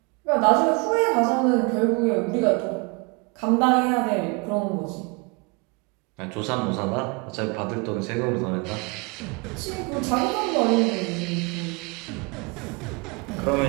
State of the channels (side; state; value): left; quieter; 30.5 dB